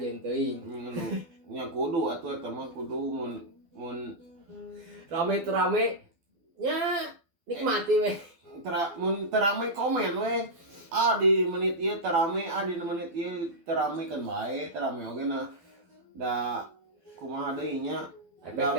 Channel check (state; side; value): late; left; 12 ms